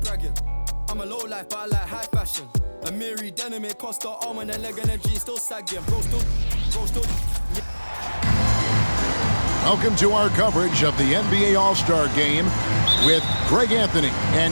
bragging. I'm a low life, but I like high fashion. A Miri denim, it cost her arm and a leg and a G still sagging. Bro still. Welcome to our coverage of the NBA All-Star Game with Greg Anthony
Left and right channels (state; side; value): inverted; both; correlation -1.00